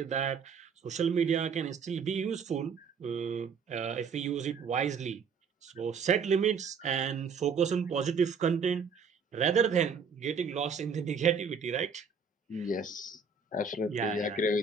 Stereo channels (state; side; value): quieter; left; 5.6 dB